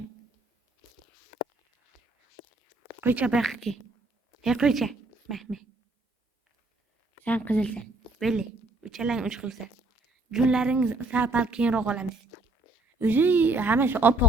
Qo'ycha bu yoqqa kel. Hey, qo'ycha. Mahmud. Sen qizilsan. Böyle. Uchalang uch xilsan. Junlaringiz sal keyinroq olamiz. O'zi hammasi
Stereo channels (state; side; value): quieter; left; 3.2 dB